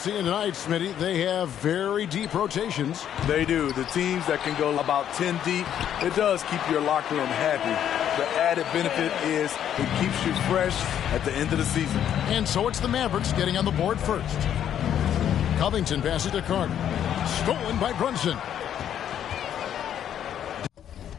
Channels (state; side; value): quieter; right; 9.9 dB